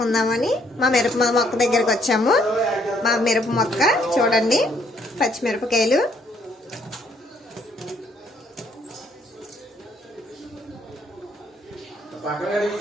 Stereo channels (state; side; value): normal; both; correlation 0.68